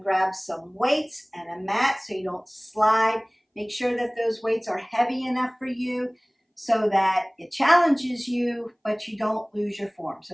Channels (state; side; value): identical; both; correlation 1.00